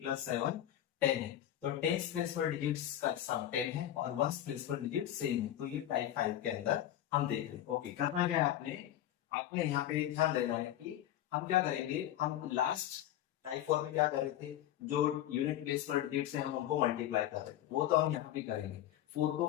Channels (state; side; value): quieter; right; 12.3 dB